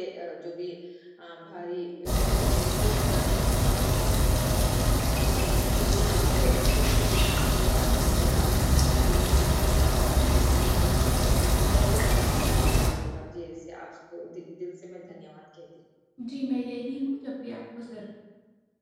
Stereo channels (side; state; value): both; identical; correlation 1.00